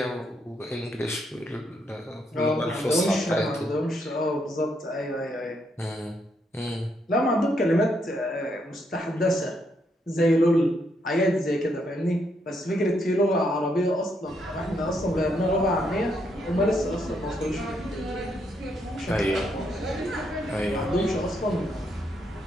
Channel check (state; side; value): normal; both; correlation 0.76